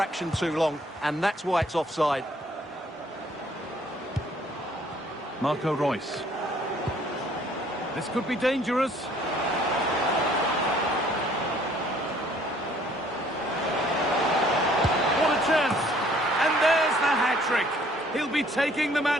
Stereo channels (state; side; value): normal; both; correlation 0.60